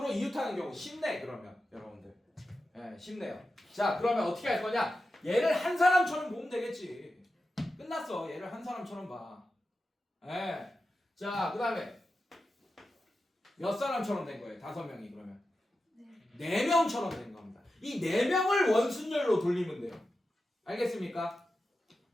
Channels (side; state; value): both; normal; correlation 0.91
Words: 이웃하는 경우 쉽네 그러면 여러분들. 예, 쉽네요. 자, 그러면 어떻게 할 거냐? 얘를 한 사람처럼 보면 되겠지. 끝났어. 얘를 한 사람처럼 봐. 예. 자, 그 다음에 몇 사람처럼 된 거예요? 5명이 그러면? 4명처럼 된 겁니다. 이 4명을 원순열로 돌리면 돼요. 알겠습니까?